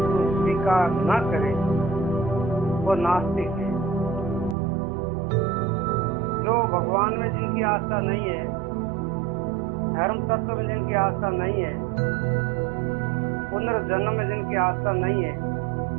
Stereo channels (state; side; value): drops out; left; at 4.5 s